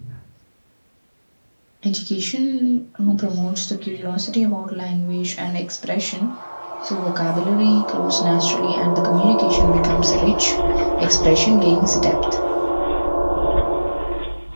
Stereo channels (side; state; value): both; inverted; correlation -1.00